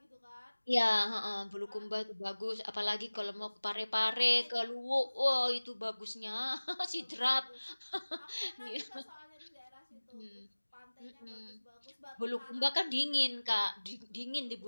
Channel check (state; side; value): inverted; both; correlation -1.00